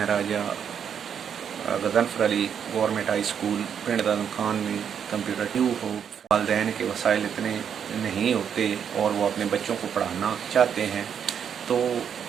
राजा Ghazanfar Ali government high school पिंड दादम खान में कंप्यूटर ट्यूब हो। वालदैन के वसाइल इतने नहीं होते और वो अपने बच्चों को पढ़ाना चाहते हैं, तो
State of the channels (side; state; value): left; quieter; 8.0 dB